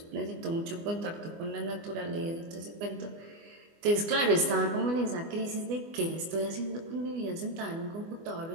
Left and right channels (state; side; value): late; left; 24 ms